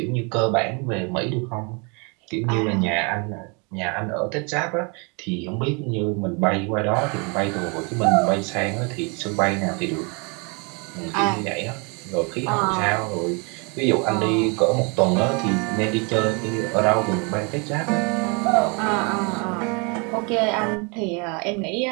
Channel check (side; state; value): left; quieter; 32.5 dB